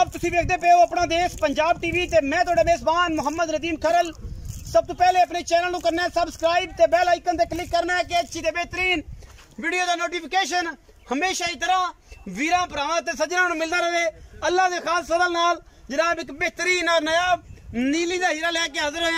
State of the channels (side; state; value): both; identical; correlation 1.00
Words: तुसी देखते पे हो अपना देश पंजाब टीवी ते मैं तुहाडा मेजबान मोहम्मद नदीम खरल। सब तो पहले अपने चैनल को करना है सबसक्राइब ते बेल आइकन ते क्लिक करना है कि अच्छी ते बेहतरीन वीडियो का नोटिफिकेशन हमेशा ही तरह वीरां भरावां ते सज्जनां नूं मिलदा रहे। अल्लाह दे खास फजल नाल जनाब एक बेहतरीन और नायाब नीली का हीरा लेके हाजिर